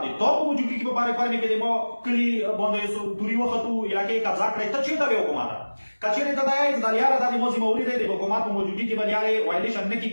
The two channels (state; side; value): inverted; both; correlation -1.00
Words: د تا په موجودګي کې په بارې کورمې کې د ما کلي باندې توري وختو، علاقې قبضه کړې. ته چېرته وې حکومت؟ که چېرې ته دا یې چې دا لیاره دا د ما ذمهوري دی، د حکومت په موجودګي کې به لیارې وایلیشن نه